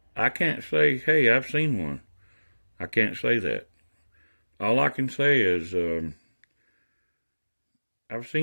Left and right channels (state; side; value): inverted; both; correlation -1.00